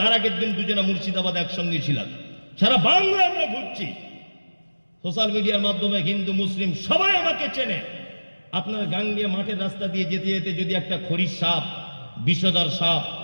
আগের দিন দুজনা মুর্শিদাবাদ একসঙ্গে ছিলাম। সারা বাংলা আমরা ঘুরছি, সোশ্যাল মিডিয়ার মাধ্যমে হিন্দু মুসলিম সবাই আমাকে চেনে। আপনার গাঙ্গিয়া মাঠের রাস্তা দিয়ে যেতে যেতে যদি একটা খড়ির সাপ, বিষধর সাপ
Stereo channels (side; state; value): both; inverted; correlation -1.00